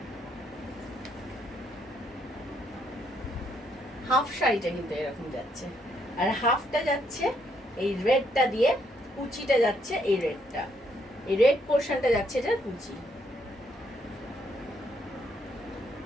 হাফ শাড়িটা কিন্তু এরকম যাচ্ছে, আর হাফটা যাচ্ছে এই রেডটা দিয়ে, কুচিটা যাচ্ছে এই রেডটা, এই রেড পোর্শনটা যাচ্ছে এটার কুচি।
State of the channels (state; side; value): normal; both; correlation 0.73